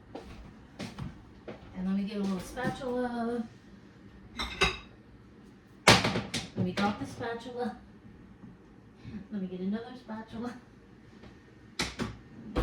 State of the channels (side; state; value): both; identical; correlation 1.00